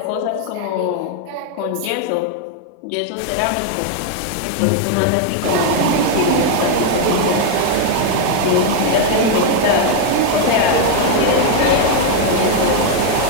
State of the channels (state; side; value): different; both; correlation 0.01